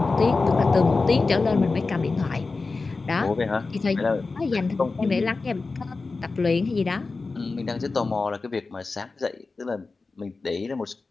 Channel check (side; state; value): right; quieter; 3.9 dB